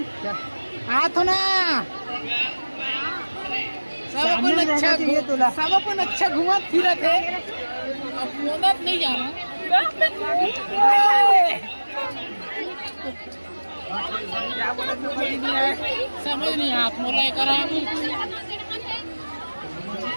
हाथ ना सब अपन अच्छा घुमा फिरा थे। अब मोनत नहीं जाना समझ नहीं हाथ मोला करा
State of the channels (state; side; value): inverted; both; correlation -1.00